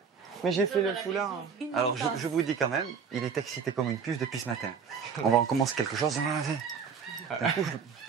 Mais j'ai fait le foulard. Alors, je vous dis quand même, il est excité comme une puce depuis ce matin. On commence quelque chose. D'un coup, je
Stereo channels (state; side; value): quieter; left; 6.3 dB